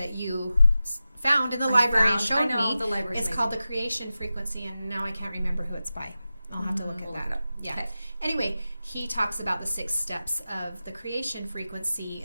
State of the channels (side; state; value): both; inverted; correlation -0.94